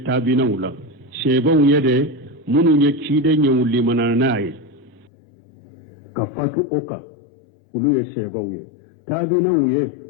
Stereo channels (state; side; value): drops out; right; at 5.1 s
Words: tabina wula sheba wuye de munye ciden ye wuli mananaye ka fatu oka uluye sheba wuye tabina wuye